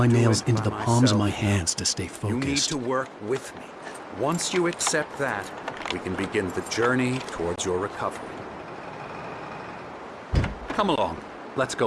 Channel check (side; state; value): both; identical; correlation 1.00